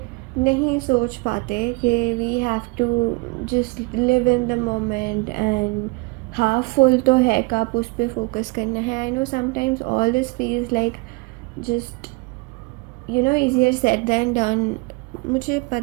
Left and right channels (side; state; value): left; quieter; 26.7 dB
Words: नहीं सोच पाते कि we have to just live in the moment and half full तो है कप, उस पर फोकस करना है। I know sometimes all this feels like just easier said than done. मुझे